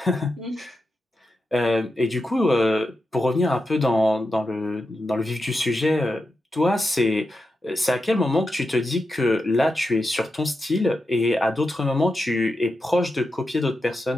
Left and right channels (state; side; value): normal; both; correlation 0.89